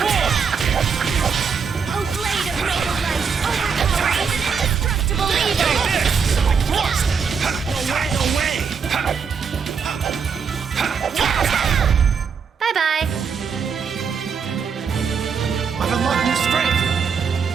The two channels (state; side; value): quieter; left; 6.2 dB